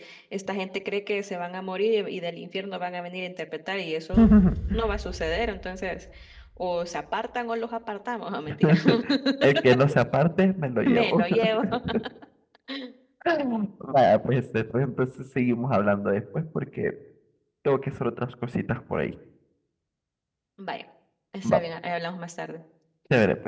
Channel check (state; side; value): identical; both; correlation 1.00